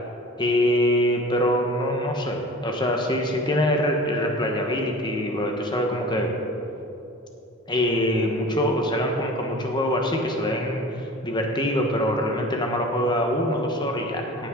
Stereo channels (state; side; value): normal; both; correlation 0.40